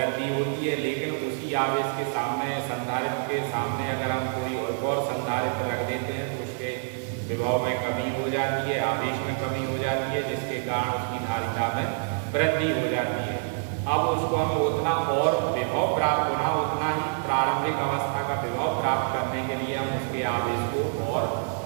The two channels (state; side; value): silent; left; 56 dB below the other